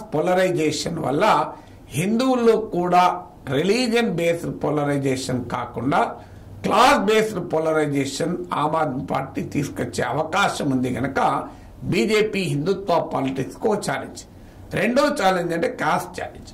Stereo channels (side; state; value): both; identical; correlation 1.00